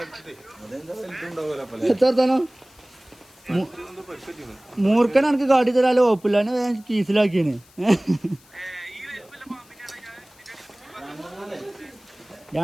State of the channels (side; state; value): left; noise; hiss, 27 dB below the sound